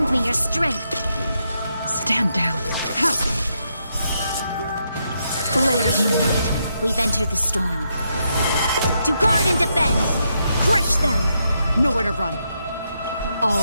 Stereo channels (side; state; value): both; inverted; correlation -0.80